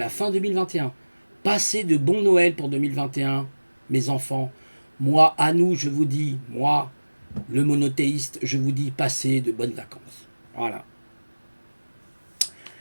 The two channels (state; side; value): inverted; both; correlation -1.00